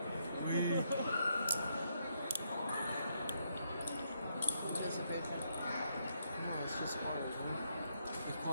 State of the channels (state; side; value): inverted; both; correlation -0.77